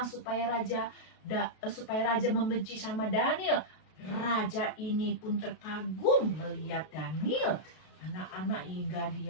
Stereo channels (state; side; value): late; right; 33 ms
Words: supaya raja membenci sama Daniel. Raja ini pun terkagum melihat Daniel. Anak-anak hingga